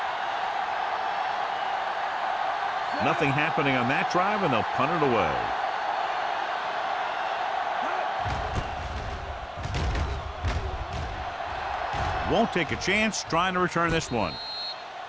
Nothing happening on that drive, and they'll punt it away. Won't take a chance trying to return this one.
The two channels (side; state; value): both; identical; correlation 1.00